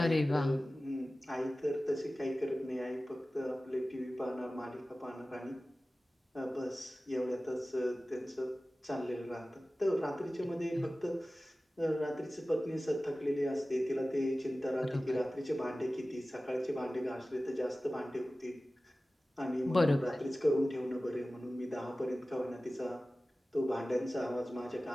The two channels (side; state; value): both; normal; correlation 0.96